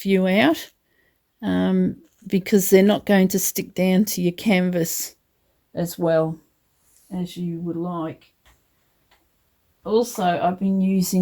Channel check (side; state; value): both; identical; correlation 1.00